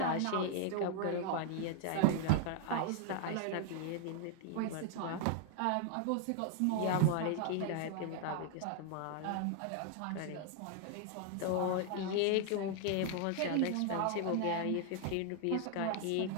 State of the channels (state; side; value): different; both; correlation 0.00